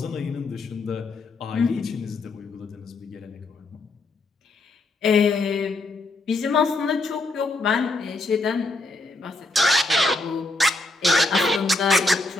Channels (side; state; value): right; quieter; 3.1 dB